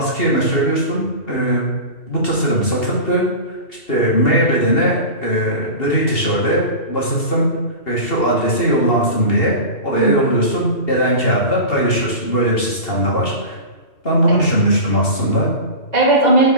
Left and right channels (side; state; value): right; late; 2.8 ms